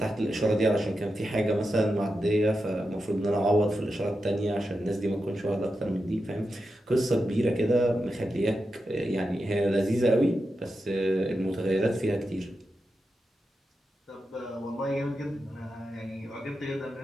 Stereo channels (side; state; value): both; normal; correlation 0.89